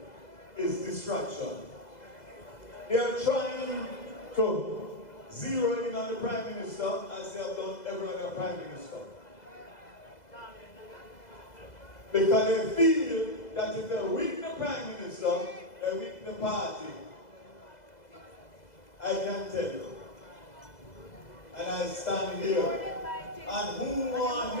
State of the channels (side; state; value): right; late; 2.0 ms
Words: is distraction. They are trying to zero in on the Prime Minister as they have done every other Prime Minister. Because they feel that if they weaken the Prime Minister, they weaken the party. I can tell you. And I stand here. And who want